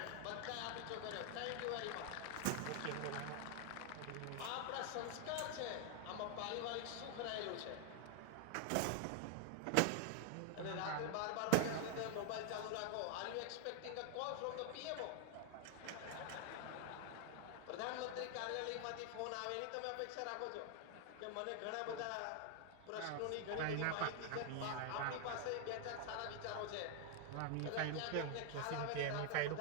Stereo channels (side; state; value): both; different; correlation 0.00